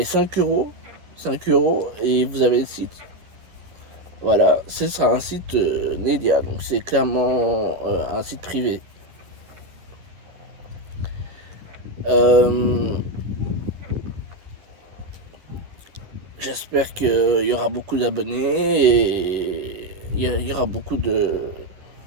5 euros. 5 euros et vous avez le site. Voilà, ce sera un site Nedia. Donc c'est clairement un site privé. J'espère qu'il y aura beaucoup d'abonnés et il y aura beaucoup de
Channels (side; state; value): left; late; 11 ms